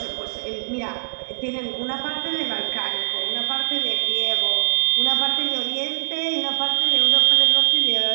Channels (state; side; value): silent; left; digital silence